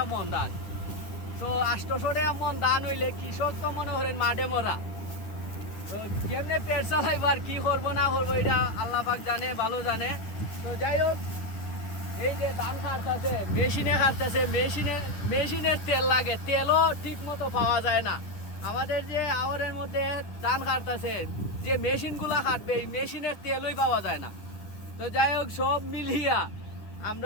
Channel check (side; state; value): right; late; 9.9 ms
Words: মন ধান। তো 800 টাকা মন ধান হইলে কৃষক তো মনে করেন মাঠে মরা। তো কেমনে পেট চালাইব আর কি করবো না করবো এটা আল্লাহ পাক জানে, ভালো জানে। তো যাই হোক, এই যে ধান কাটতেছে, মেশিনে কাটতেছে, মেশিনের তেল লাগে, তেলও ঠিক মতো পাওয়া যায় না। আমাদের যে আওয়ারের মধ্যে ধান কাটতেছে, যে মেশিনগুলা কাটবে এই মেশিনের তেলই পাওয়া যায় না। তো যাই হোক, সব মিলিয়া